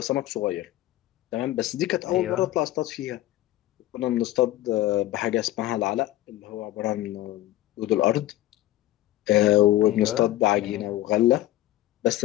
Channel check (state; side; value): quieter; right; 15.3 dB